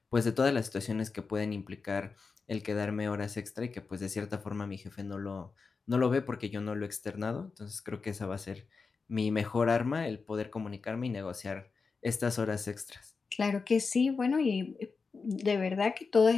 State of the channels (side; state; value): right; quieter; 4.7 dB